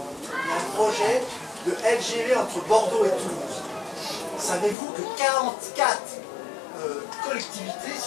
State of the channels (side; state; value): right; drops out; at 4.8 s